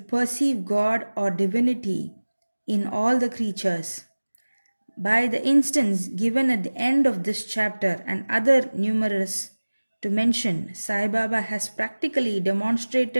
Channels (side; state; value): both; inverted; correlation -1.00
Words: God or divinity in all the creatures. By the instance given at the end of this chapter and other numerous to mention, Sai Baba has practically